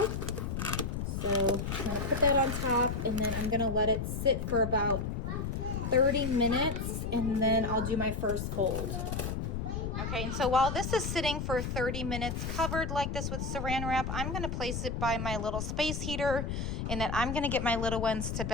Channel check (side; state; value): left; noise; rumble, 3 dB below the sound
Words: So I'm going to put that on top, and then I'm going to let it sit for about 30 minutes, and then I'll do my first fold. Okay, and so while this is sitting for 30 minutes covered like this with saran wrap, I'm going to place it by my little space heater, and then I'm going to get my little ones to